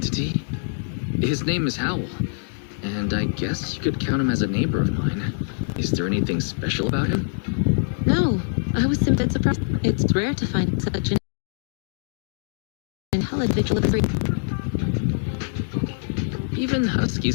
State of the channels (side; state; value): right; silent; digital silence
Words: His name is Howl, and I guess you could count him as a neighbor of mine. Is there anything special about him? No, I was simply surprised. It's rare to find such an intelligent vigilante. Even